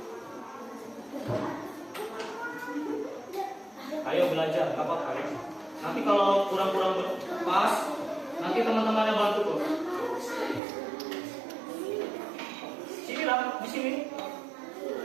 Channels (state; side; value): drops out; left; at 10.6 s